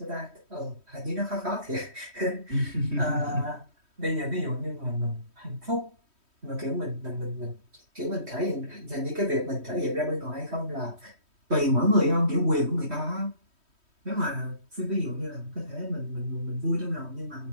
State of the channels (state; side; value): late; left; 3.1 ms